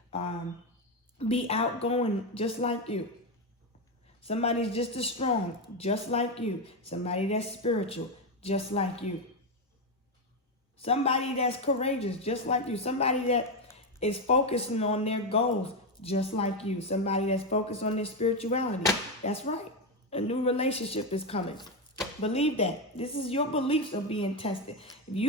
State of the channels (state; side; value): normal; both; correlation 0.09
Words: be outgoing just like you. Somebody's just as strong, just like you. Somebody that's spiritual, just like you. Somebody that's courageous, just like you. Somebody that is focusing on their goals, just like you. Somebody that's focused on their spirituality. That's right. A new relationship is coming. Believe that. This is your beliefs are being tested. If